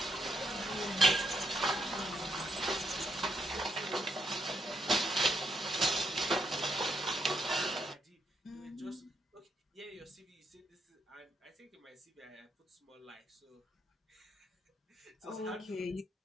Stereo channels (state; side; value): normal; both; correlation 0.77